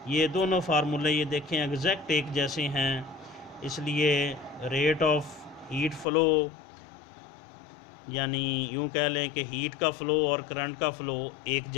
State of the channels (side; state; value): right; drops out; at 6.1 s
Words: ये दोनों फार्मूले ये देखें एग्जैक्ट एक जैसे हैं, इसलिए रेट ऑफ हीट फ़्लो, यानी यूं कह लें कि हीट का फ़्लो और करंट का फ़्लो एक